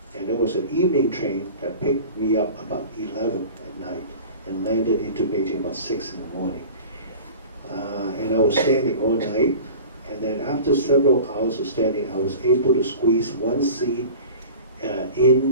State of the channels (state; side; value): inverted; both; correlation -0.39